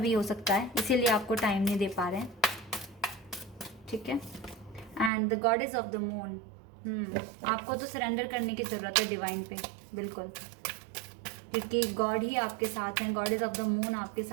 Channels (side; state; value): left; drops out; at 5.1 s